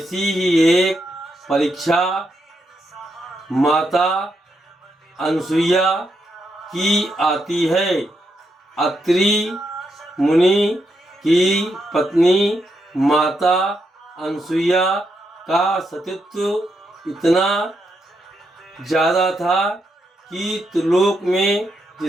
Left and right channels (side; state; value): both; normal; correlation 0.81